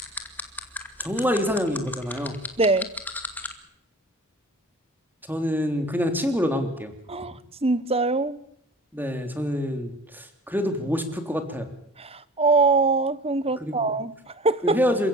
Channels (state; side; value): normal; both; correlation 0.42